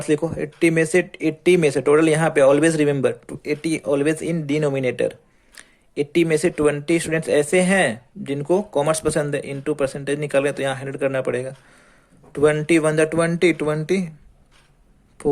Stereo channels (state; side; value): identical; both; correlation 1.00